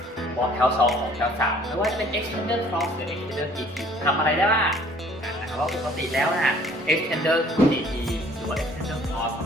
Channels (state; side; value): normal; both; correlation 0.56